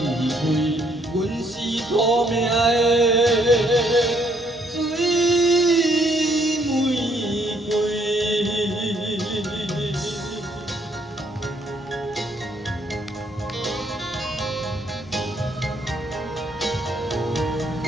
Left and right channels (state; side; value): normal; both; correlation 0.68